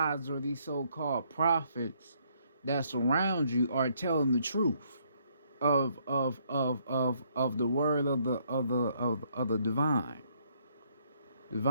or these so-called prophets that surround you are telling the truth of the word of the divine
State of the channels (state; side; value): inverted; both; correlation -0.69